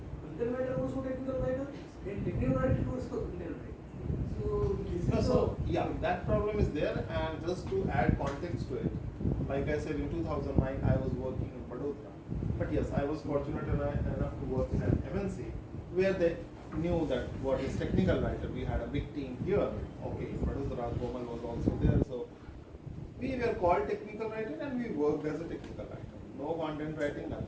there, and just to add context to it, like I said, in 2009 I was working in Vadodara. But yes, I was fortunate enough to work in an MNC where they knew that what is technical writer. We had a big team here. Okay, in Vadodara, Komal was also there. So we were called technical writer and we worked as a technical writer. No content writing,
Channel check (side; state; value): both; identical; correlation 1.00